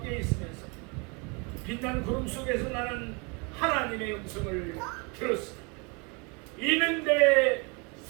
있으면서 빛난 구름 속에서 나는 하나님의 음성을 들었습니다. 이는 내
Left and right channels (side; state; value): left; quieter; 31.2 dB